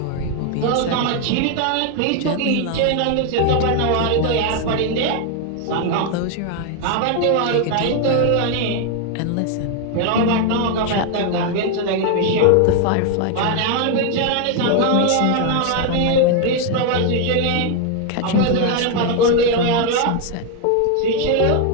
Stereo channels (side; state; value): both; different; correlation 0.01